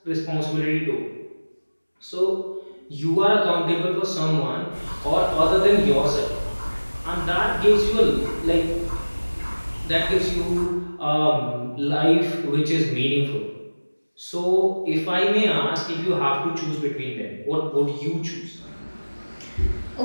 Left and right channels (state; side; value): inverted; both; correlation -1.00